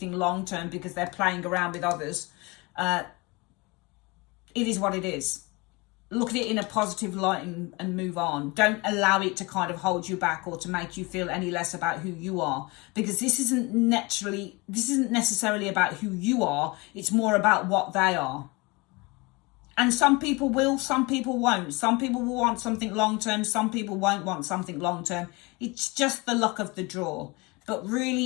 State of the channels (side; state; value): right; quieter; 25.8 dB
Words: long term because they're playing around with others, it is what it is. Look at it in a positive light and move on. Don't allow it to kind of hold you back or to make you feel any less about who you are, because this isn't necessarily about who you are. It's more about what they are. And some people will, some people won't. Some people will want something long-term. Some people won't want something long-term. It's just the luck of the draw. But